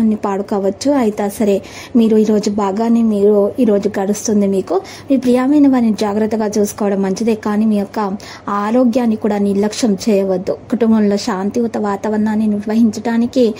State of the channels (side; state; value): both; identical; correlation 1.00